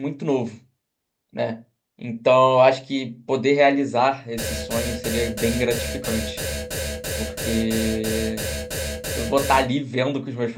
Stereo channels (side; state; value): both; identical; correlation 1.00